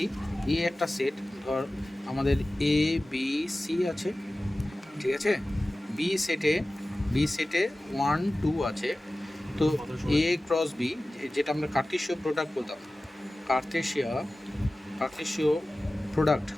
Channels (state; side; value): normal; both; correlation 0.96